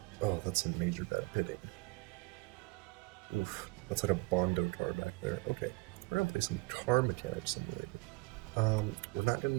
Oh, that's some major bad hitting. Oof, that's like a Bondo car back there. Okay, we're gonna play some Car Mechanic Simulator. We're not gonna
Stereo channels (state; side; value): quieter; left; 26.1 dB